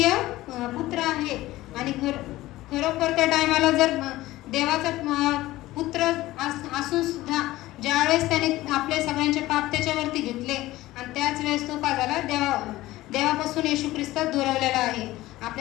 पुत्र आहे. आणि खरोखर त्या टायमाला जर देवाचा पुत्र असून सुद्धा ज्यावेळेस त्याने आपले सगळ्यांचे पाप त्याच्यावरती घेतले आणि त्याच वेळेस तो काय झाला, देवापासून येशू ख्रिस्त दुरावलेला आहे.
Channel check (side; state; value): right; quieter; 17.1 dB